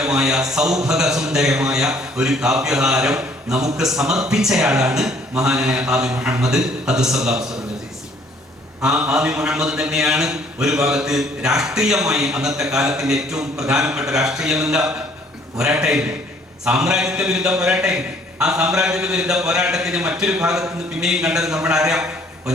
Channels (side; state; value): both; normal; correlation 0.60